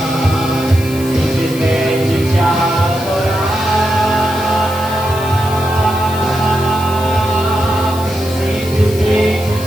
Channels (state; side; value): noise; left; hiss, 15 dB below the sound